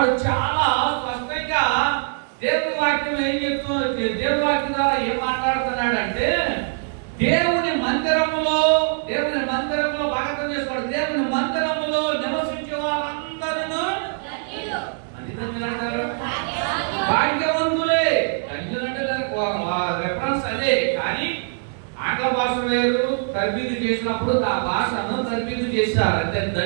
చాలా స్పష్టంగా దేవుని వాక్యం ఏం చెప్తున్నారు, దేవుని వాక్యం ద్వారా ఏం మాట్లాడుతున్నాడంటే దేవుని మందిరములో భాగం చేసుకోవడం, దేవుని మందిరములో నివసించే వారందరూ భాగ్యవంతులే. ధన్యులంటే రెఫరెన్స్ అదే, కానీ ఆంగ్ల భాష వేరు. తర్బీదు చేసినప్పుడు ఆ భాషను తర్బీదు చేశారు అంటే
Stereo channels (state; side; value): silent; left; 64 dB below the other